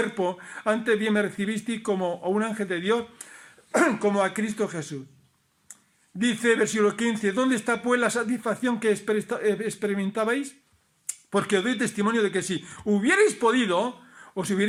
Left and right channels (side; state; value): both; identical; correlation 1.00